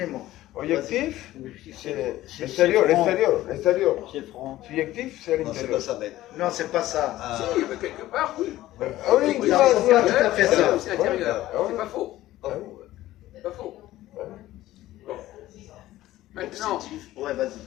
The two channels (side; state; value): right; quieter; 15.4 dB